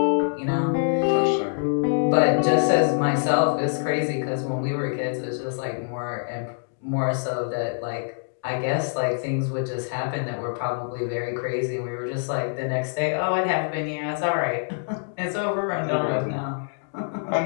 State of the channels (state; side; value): silent; right; digital silence